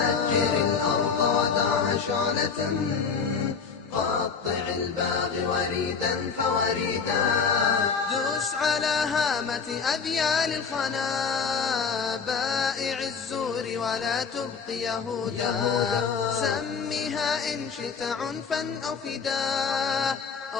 الأرض ودعها شعلة، قطع الباغي وريدا فوريدا. دوس على هامة أذيال الخنا، بائع الزور ولا تبق يهودا. سمها إن شئت عنفا أو فداء،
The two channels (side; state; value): right; quieter; 5.7 dB